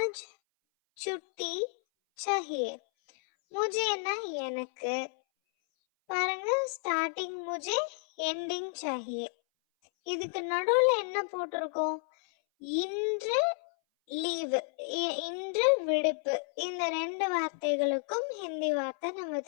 छुट्टी चाहिए. मुझेனா எனக்கு. பாருங்க, ஸ்டார்டிங் முஜே, எண்டிங் சாஹியே. இதுக்கு நடுவுல என்ன போட்டிருக்கோம்? இன்று லீவு, இன்று விடுப்பு. இந்த ரெண்டு வார்த்தைகளுக்கும் ஹிந்தி வார்த்தை நம்ம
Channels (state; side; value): silent; right; 57 dB below the other